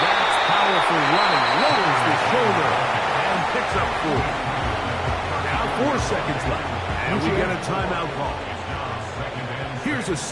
powerful running. Lowers the shoulder and picks up 4. Now 4 seconds left. And we get a timeout call. Here's a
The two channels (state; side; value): identical; both; correlation 1.00